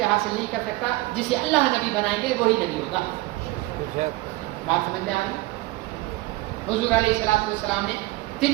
حاصل نہیں کر سکتا. جسے اللہ نبی بنائیں گے وہی نبی ہوگا. بات سمجھ میں آ رہی ہے؟ حضور علیہ الصلوۃ والسلام نے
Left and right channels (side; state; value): left; quieter; 19.8 dB